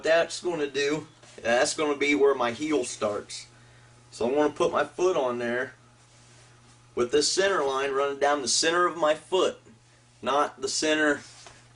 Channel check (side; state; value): both; identical; correlation 1.00